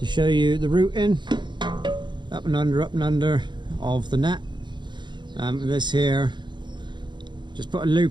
show you the routing, up and under of the net. This here, just put a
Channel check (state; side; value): late; left; 0.22 ms